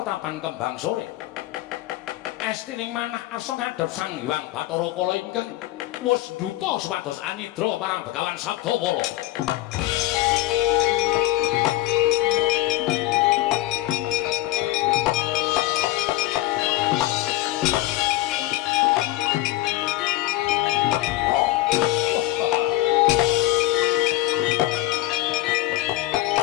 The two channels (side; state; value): right; quieter; 16.2 dB